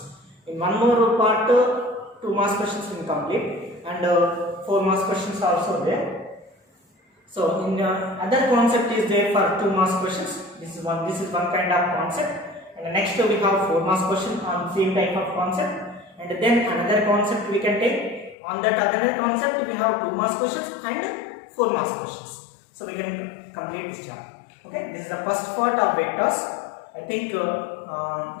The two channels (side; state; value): right; drops out; at 18.4 s